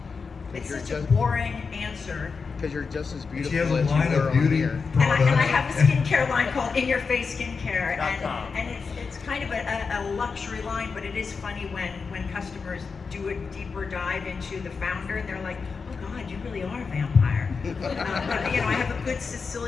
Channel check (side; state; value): right; quieter; 5.1 dB